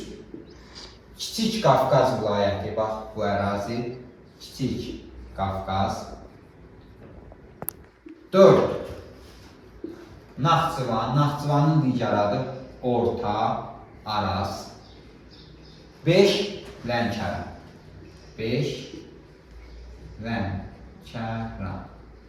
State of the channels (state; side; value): identical; both; correlation 1.00